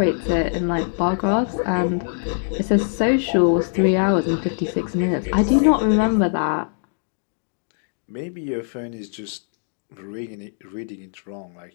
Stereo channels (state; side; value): silent; right; digital silence